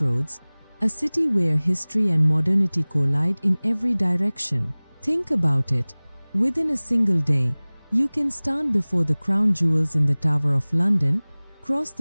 a city where history and modernity collide in every direction. Think about it. Within a single day, you can stand before the crown jewels in the Tower of London, cross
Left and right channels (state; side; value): inverted; both; correlation -1.00